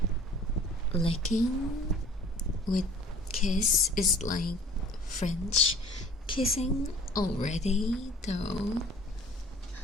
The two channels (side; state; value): both; normal; correlation 0.49